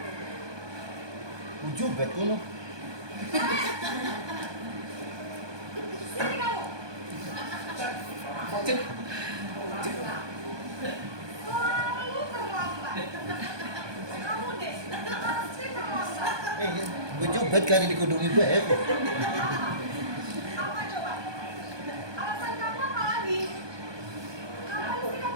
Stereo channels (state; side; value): late; left; 1.2 ms